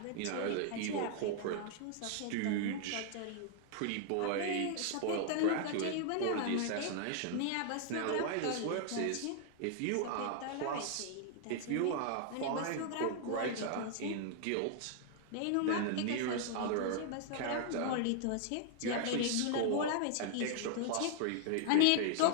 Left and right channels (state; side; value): different; both; correlation 0.00